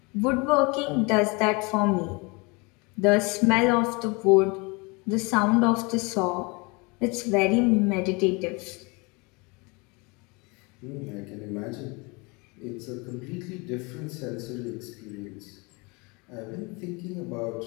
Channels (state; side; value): quieter; right; 28.3 dB